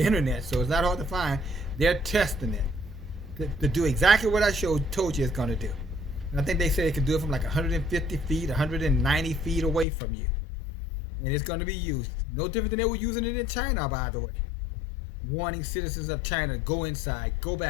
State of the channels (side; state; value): right; drops out; at 9.9 s